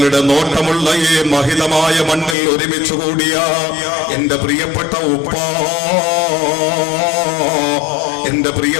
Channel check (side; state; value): right; drops out; at 2.4 s